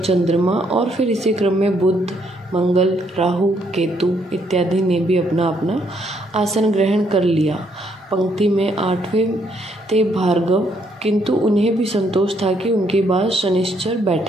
चंद्रमा और फिर इसी क्रम में बुध, मंगल, राहु, केतु इत्यादि ने भी अपना अपना आसन ग्रहण कर लिया। पंक्ति में 8वें थे भार्गव, किंतु उन्हें भी संतोष था कि उनके बाद शनिश्चर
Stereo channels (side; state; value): both; normal; correlation 0.71